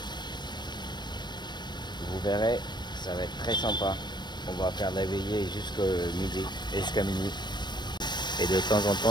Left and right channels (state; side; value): late; right; 0.22 ms